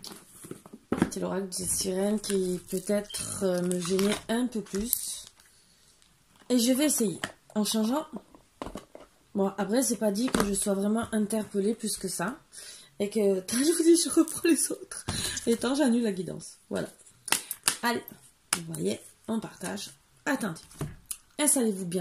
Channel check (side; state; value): both; identical; correlation 1.00